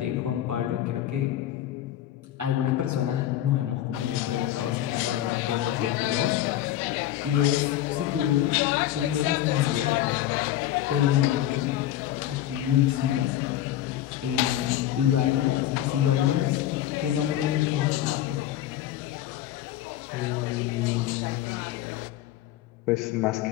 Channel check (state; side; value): quieter; right; 12.6 dB